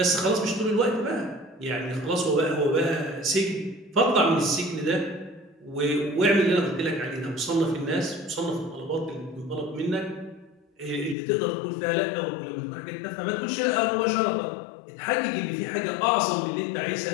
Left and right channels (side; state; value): right; drops out; at 11.2 s